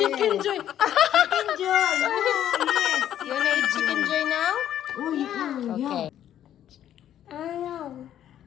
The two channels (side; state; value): right; quieter; 10.9 dB